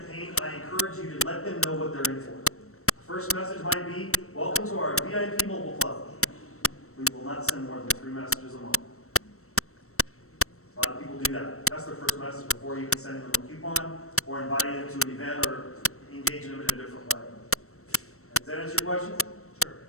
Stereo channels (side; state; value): right; late; 0.63 ms